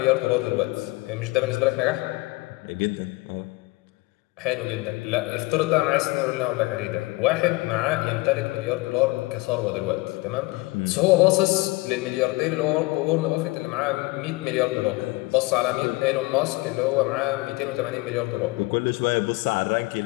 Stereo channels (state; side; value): quieter; right; 23.1 dB